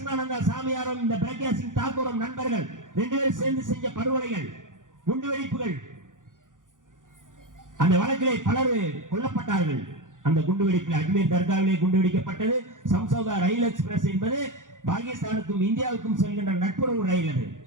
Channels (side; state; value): left; late; 0.88 ms